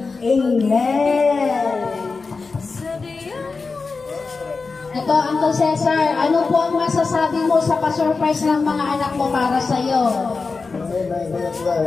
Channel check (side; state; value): right; quieter; 4.3 dB